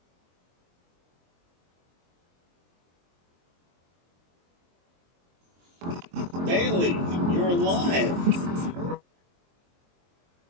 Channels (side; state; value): left; late; 23 ms